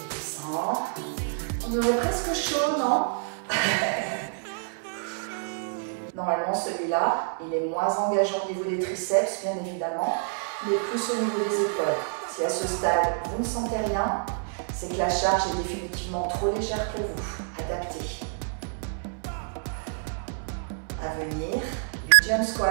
On aurait presque chaud, non? Normalement, celui-là, il est moins engageant au niveau des triceps, bien évidemment, mais plus au niveau des épaules. Si à ce stade, vous ne sentez rien, c'est que la charge est définitivement trop légère pour vous. Adaptez. À venir, du jump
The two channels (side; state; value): left; silent; 60 dB below the other